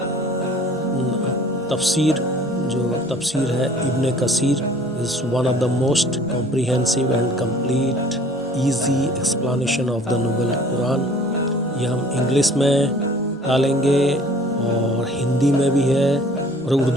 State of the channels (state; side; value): normal; both; correlation 0.52